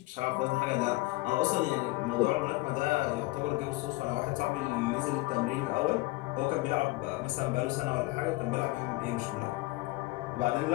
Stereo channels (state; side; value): quieter; right; 21.1 dB